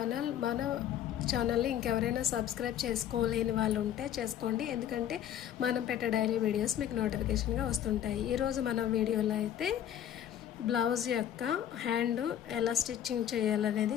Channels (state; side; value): quieter; right; 10.5 dB